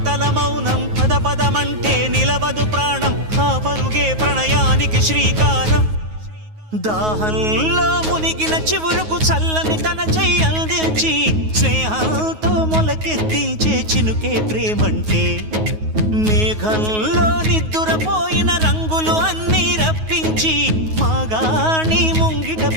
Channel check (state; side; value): late; left; 9.4 ms